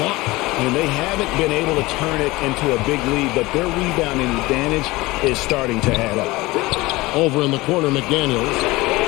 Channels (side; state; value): right; quieter; 20.8 dB